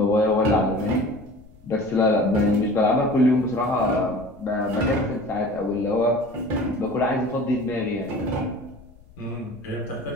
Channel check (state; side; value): noise; left; rumble, 25 dB below the sound